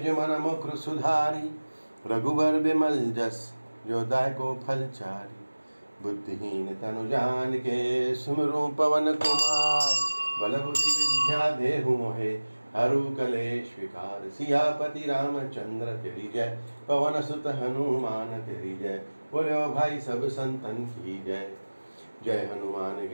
मन मुकुर सुधारी। रघुबर बिमल जस जो दायको फल चारी। बुद्धिहीन तनु जान के सुमिरु पवन कुमार। बल बुद्धि विद्या देहु मोहे हरु कलेश विकार। सियापति रामचंद्र तेरी जय, पवन सुत हनुमान तेरी जय। बोलो भाई सब संतन की जय। जय हनुमान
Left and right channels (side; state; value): both; inverted; correlation -1.00